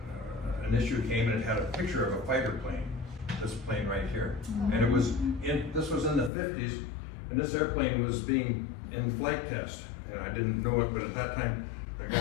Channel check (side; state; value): right; drops out; at 6.3 s